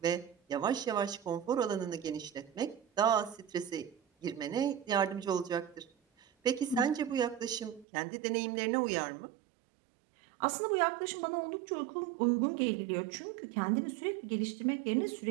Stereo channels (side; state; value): left; drops out; at 7.9 s